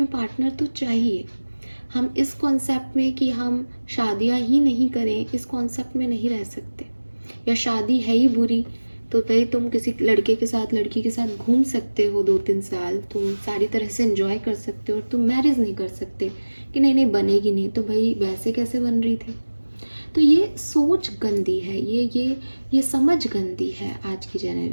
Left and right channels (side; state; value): both; inverted; correlation -1.00